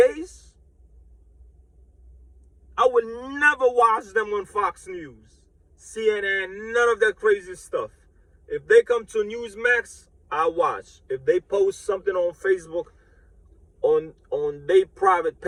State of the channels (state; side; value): identical; both; correlation 1.00